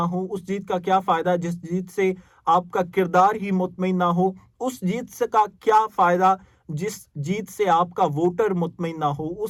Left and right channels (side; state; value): both; identical; correlation 1.00